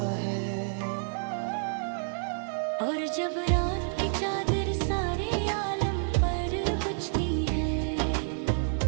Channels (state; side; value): silent; left; digital silence